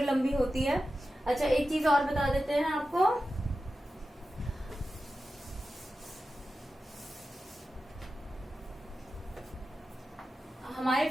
लंबी होती है। अच्छा, एक चीज और बता देते हैं आपको, हमारे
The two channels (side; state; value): both; normal; correlation 0.93